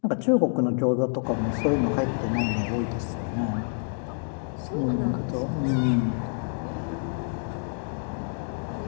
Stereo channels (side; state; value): right; silent; 60 dB below the other